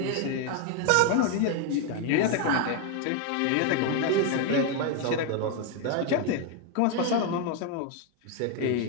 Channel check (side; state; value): both; different; correlation 0.01